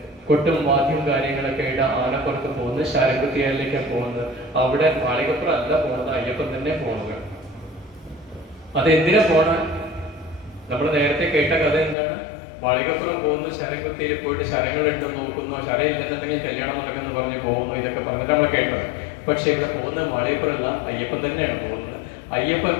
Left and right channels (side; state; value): right; drops out; at 12.0 s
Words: കൊട്ടും വാദ്യം കാര്യങ്ങളൊക്കെ ആയിട്ട് ആനപ്പുറത്ത് പോകുന്നത്, ശരംകുത്തിയാലിലേക്കാണ് പോകുന്നത്. അവിടെ മാളികപ്പുറം അല്ല പോകുന്നത്, അയ്യപ്പൻ തന്നെ പോകുന്നത്. അതെന്തിനാ പോണ? നമ്മൾ നേരത്തെ കേട്ട കഥ എന്താണ്? മാളികപ്പുറം പോകുന്നു, ശരംകുത്തിയിൽ പോയിട്ട് ശരങ്ങൾ ഉണ്ടെന്ന് നോക്കുന്നു, ശരം ഇല്ലെന്നുണ്ടെങ്കിൽ കല്യാണം നടക്കുന്നു പറഞ്ഞ് പോകുന്നു, ഇതൊക്കെ പറഞ്ഞിട്ട് നമ്മൾ കേട്ടത്. പക്ഷെ ഇവിടെ പോകുന്ന മാളികപ്പുറമല്ല, അയ്യപ്പൻ തന്നെയാണ് പോകുന്നത്. അയ്യപ്പൻ